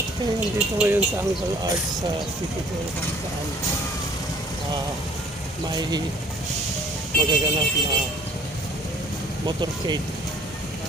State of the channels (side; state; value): both; normal; correlation 0.55